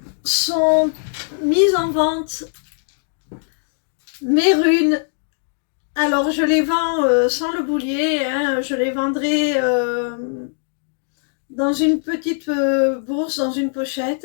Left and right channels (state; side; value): silent; right; digital silence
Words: sont mises en vente mes runes. Alors je les vends sans le boulier, hein, je les vendrai dans une petite bourse, dans une